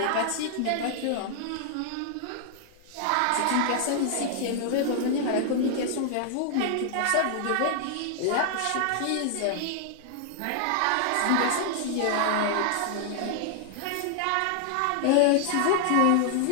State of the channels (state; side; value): different; both; correlation 0.00